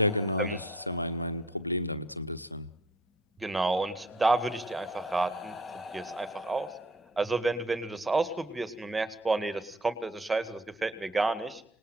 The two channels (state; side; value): normal; both; correlation 0.51